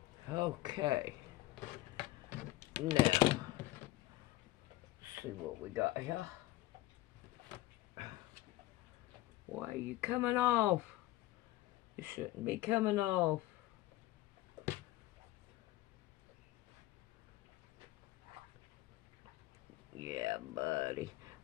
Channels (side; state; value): right; quieter; 16.9 dB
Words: Okay. Now, let's see what we got here. Why are you coming off? You shouldn't be coming off. Yeah, buddy.